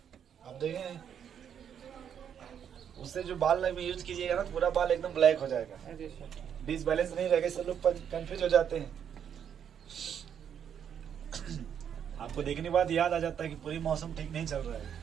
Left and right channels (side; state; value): left; quieter; 8.5 dB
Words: आप देखें उससे जो बाल में यूज कीजिएगा ना पूरा बाल एकदम ब्लैक हो जाएगा, अरे सर। डिसबैलेंस नहीं रहेगा, सब लोग कंफ्यूज हो जाते हैं। आपको देखने के बाद याद आ जाता है कि पूरी मौसम ठीक नहीं चल रहा है।